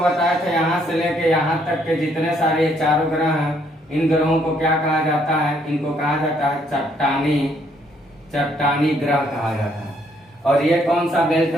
था यहाँ से लेके यहाँ तक के जितने सारे ये चारों ग्रह हैं, इन ग्रहों को क्या कहा जाता है, इनको कहा जाता है चट्टानी ग्रह कहा जाता है। और ये कौन सा बेल्ट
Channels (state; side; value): normal; both; correlation 0.69